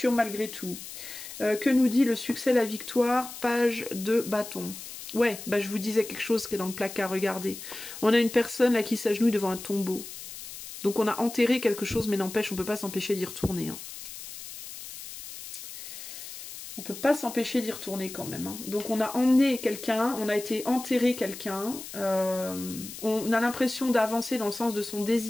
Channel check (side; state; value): left; noise; hiss, 12 dB below the sound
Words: malgré tout. Que nous dit le succès, la victoire? Page de bâton. Ouais, bah je vous disais quelque chose qui est dans le placard, regardez. On a une personne là qui s'agenouille devant un tombeau. Donc on a enterré quelque chose, mais n'empêche, on peut pas s'empêcher d'y retourner. Hein. On peut pas s'empêcher d'y retourner quand même. Hein. Donc on a emmené quelqu'un, on a été enterrer quelqu'un. On a l'impression d'avancer dans le sens de son